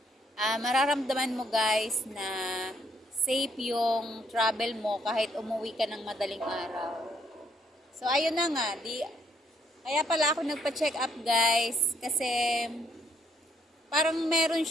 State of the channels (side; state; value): both; normal; correlation 0.70